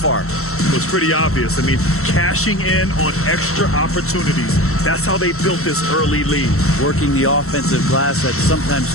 It was pretty obvious. I mean, cashing in on extra opportunities. That's how they built this early lead. Working the offensive glass that sometimes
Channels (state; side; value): late; right; 0.63 ms